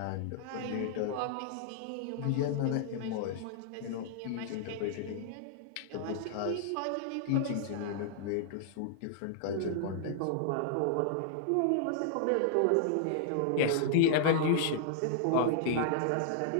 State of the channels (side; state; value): both; different; correlation -0.01